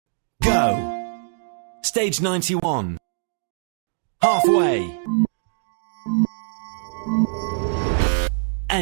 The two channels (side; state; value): left; silent; 63 dB below the other